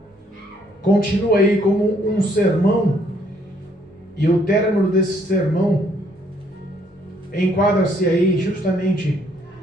Continua aí como um sermão. E o término desse sermão enquadra-se aí justamente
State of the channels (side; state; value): both; normal; correlation 0.67